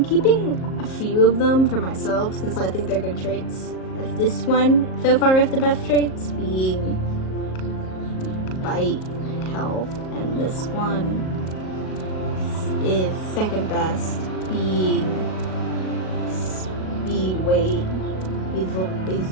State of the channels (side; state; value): right; late; 38 ms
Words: Keeping a few of them for myself since I think they're good traits. As this one so far is the best traits, being bite, health, and this one is second best, being speed, weight. These